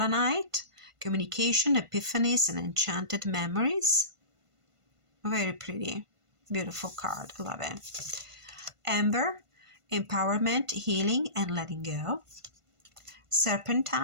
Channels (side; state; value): left; late; 1.5 ms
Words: communication, epiphanies, and enchanted memories. Very pretty, beautiful card. I love it. Amber, empowerment, healing, and letting go.